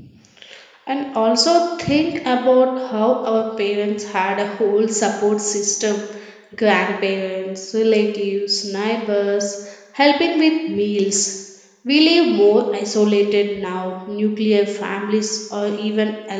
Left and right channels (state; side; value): identical; both; correlation 1.00